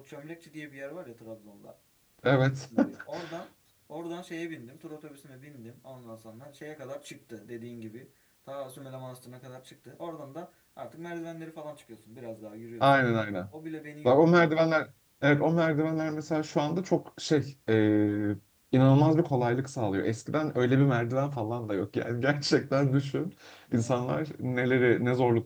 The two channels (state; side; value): identical; both; correlation 1.00